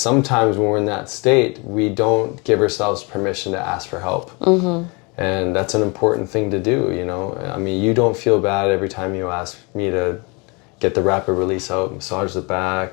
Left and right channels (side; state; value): right; quieter; 29.4 dB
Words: when we're in that state, we don't give ourselves permission to ask for help. And that's an important thing to do, you know. I mean, you don't feel bad every time you ask me to get the rapid release out, massage the